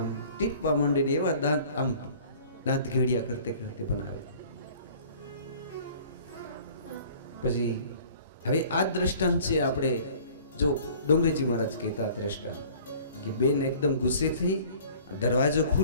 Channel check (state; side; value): inverted; both; correlation -0.50